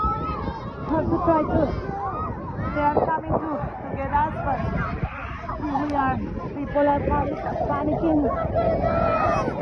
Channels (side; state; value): both; identical; correlation 1.00